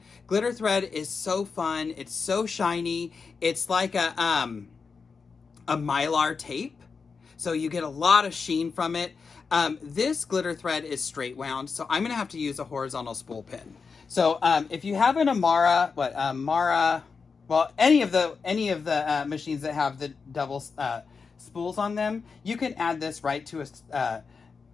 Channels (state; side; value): quieter; right; 5.1 dB